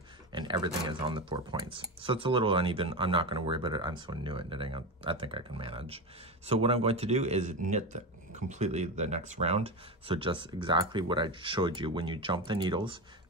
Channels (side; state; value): both; normal; correlation 0.20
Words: and everything is on the 4 points. So it's a little uneven. I'm not gonna worry about it. I'm so new at knitting, I think I can manage. So what I'm going to do is knit completely the next round. So just exactly what I showed you. When you jump the needles,